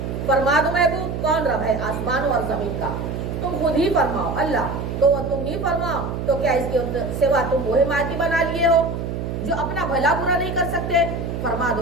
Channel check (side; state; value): right; noise; hum, 4 dB below the sound